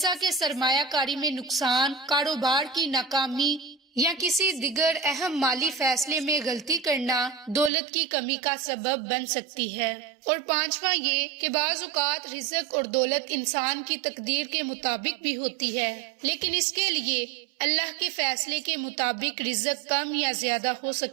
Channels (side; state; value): left; drops out; at 7.7 s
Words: کہ سرمایہ کاری میں نقصان، کاروبار کی ناکامی یا کسی دیگر اہم مالی فیصلے میں غلطی کرنا، دولت کی کمی کا سبب بن سکتی ہے۔ اور پانچواں یہ کہ بعض اوقات رزق اور دولت انسان کی تقدیر کے مطابق بھی ہوتی ہے، لیکن اس کے لیے اللہ کے فیصلے کے مطابق رزق کم یا زیادہ ہو